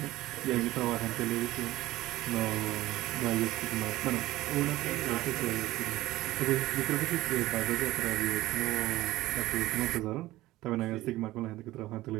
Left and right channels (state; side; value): quieter; left; 17.1 dB